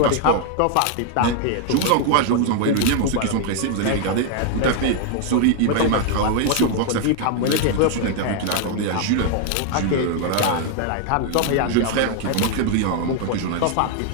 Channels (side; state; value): both; different; correlation 0.00